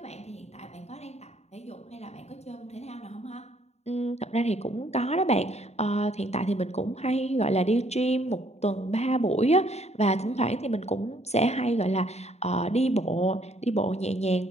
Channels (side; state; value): right; late; 0.31 ms